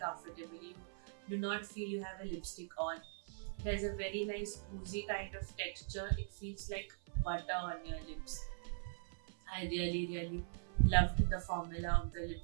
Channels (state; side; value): silent; left; 50 dB below the other